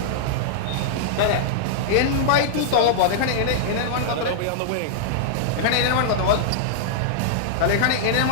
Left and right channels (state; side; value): different; both; correlation -0.01